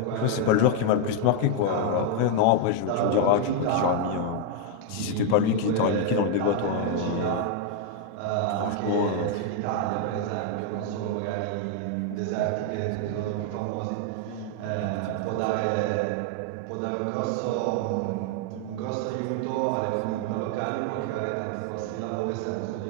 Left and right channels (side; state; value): both; different; correlation 0.00